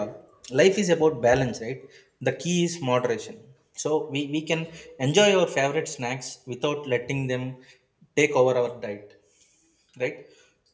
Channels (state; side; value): identical; both; correlation 1.00